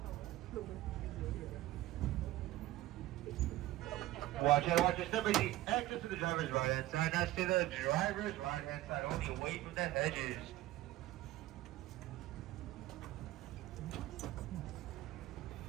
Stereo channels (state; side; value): quieter; left; 15.9 dB